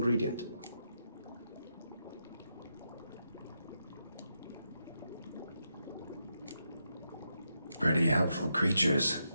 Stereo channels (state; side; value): inverted; both; correlation -0.84